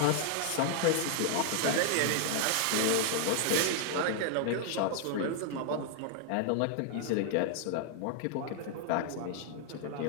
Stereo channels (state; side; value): different; both; correlation 0.00